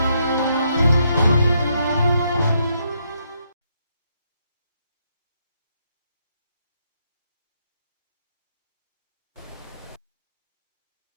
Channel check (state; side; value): inverted; both; correlation -0.76